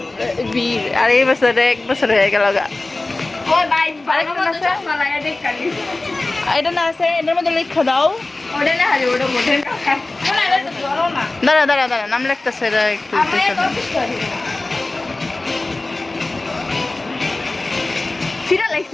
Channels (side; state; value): right; quieter; 3.0 dB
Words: বীর, আর এই বছর 1 বছর হয়ে গেল গা। ওই ভাই আরেকটা ভালো আছে? চশমা লাগাই দেখ কালি এটা না আছে, এটার মধ্যে লেখা দাও। ওটা না হারি ওটা মোটে না এটা তো ধরো না দাঁড়া দাঁড়া দাঁড়া, নাম লিখতেছে এটা একটু আমি দেখে দাও। কপি করি সিরা